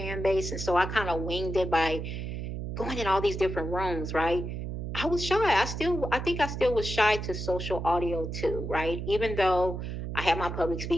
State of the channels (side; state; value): right; noise; hum, 5 dB below the sound